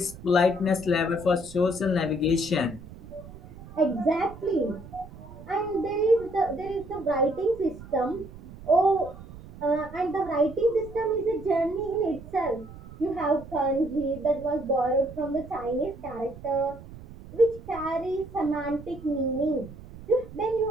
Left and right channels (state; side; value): noise; right; rumble, 16 dB below the sound